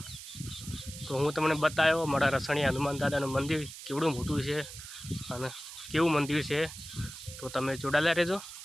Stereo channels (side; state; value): right; noise; hiss, 13 dB below the sound